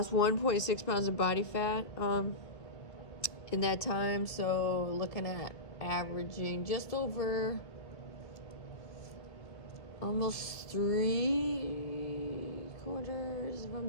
1.6 pounds of body fat in that time. So looking at averaging just over almost 3/4, if I'm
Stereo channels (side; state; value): right; late; 1.8 ms